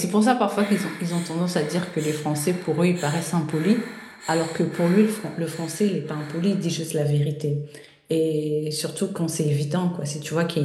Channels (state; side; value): identical; both; correlation 1.00